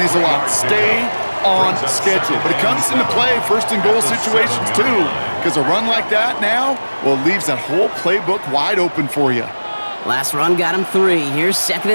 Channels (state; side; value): inverted; both; correlation -1.00